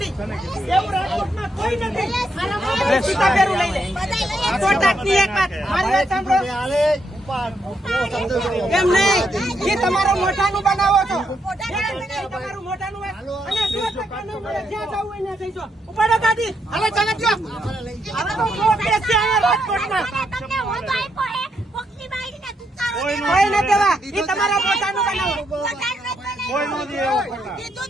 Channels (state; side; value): normal; both; correlation 0.78